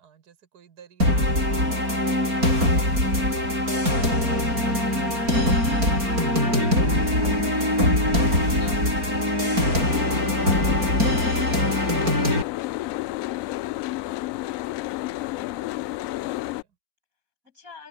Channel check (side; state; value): left; late; 4.4 ms